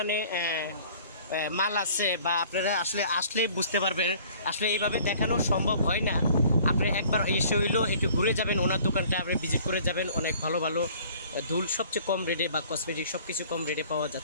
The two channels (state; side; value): inverted; both; correlation -0.52